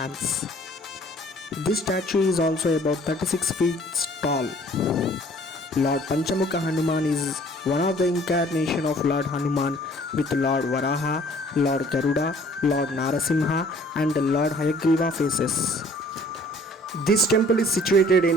This statue is also about 36 feet tall. Lord Panchamukha Hanuman is one of the incarnation of Lord Hanuman with Lord Varaha, Lord Garuda, Lord Narasimha and Lord Hayagriva faces. This temple is situated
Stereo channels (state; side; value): normal; both; correlation 0.55